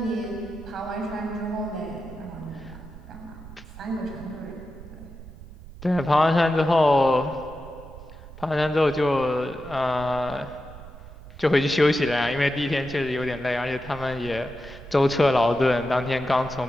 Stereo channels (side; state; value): right; noise; rumble, 16 dB below the sound